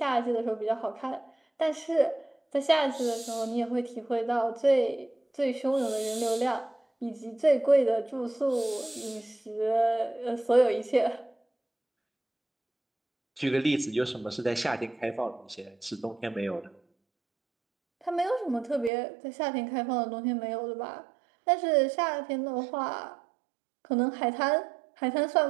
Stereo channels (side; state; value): left; drops out; at 18.9 s